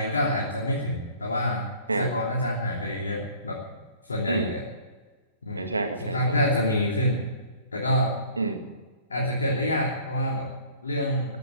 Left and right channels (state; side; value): inverted; both; correlation -0.52